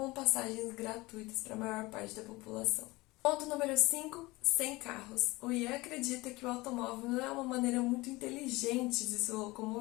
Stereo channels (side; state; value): right; quieter; 21.6 dB